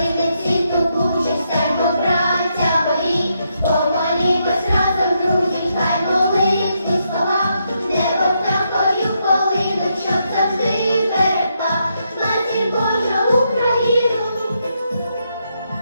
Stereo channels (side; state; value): both; inverted; correlation -0.79